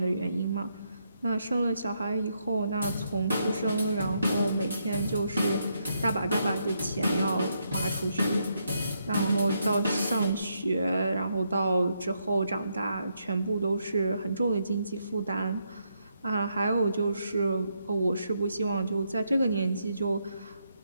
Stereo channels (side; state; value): both; inverted; correlation -0.78